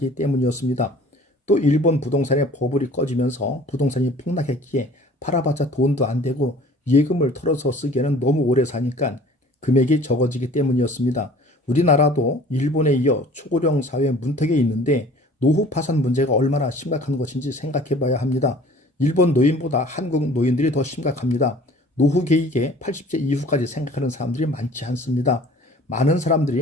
때문이었습니다. 또 일본 부동산의 버블이 꺼지면서 부동산이 폭락했기에 팔아봤자 돈도 안 되고 예금을 털어서 쓰기에는 너무 오래 사니까 금액이 적어지기 때문이었습니다. 우리나라도 일본에 이어 초고령 사회 문턱에 있는데 노후 파산 문제가 얼마나 심각한 것인지 생각해 봐야 합니다. 일본 노인보다 한국 노인들이 더 심각합니다. 노후 계획에 80세 이후까지 생각하는 사람들이 많지 않습니다. 많은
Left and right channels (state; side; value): normal; both; correlation 0.49